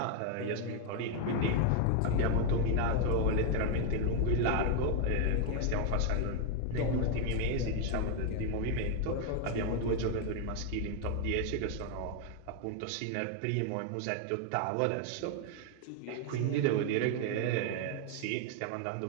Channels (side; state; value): both; different; correlation 0.01